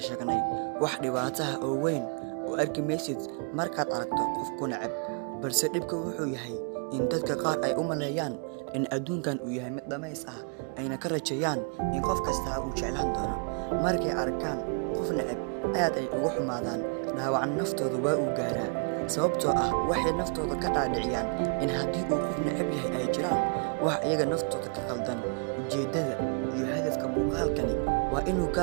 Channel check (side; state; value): left; quieter; 39.8 dB